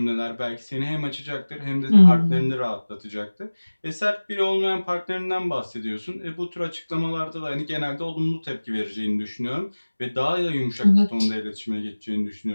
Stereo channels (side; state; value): both; inverted; correlation -1.00